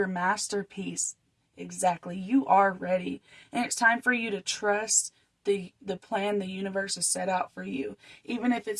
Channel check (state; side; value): identical; both; correlation 1.00